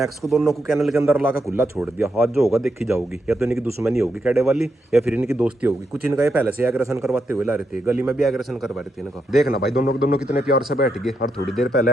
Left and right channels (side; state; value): both; normal; correlation 0.82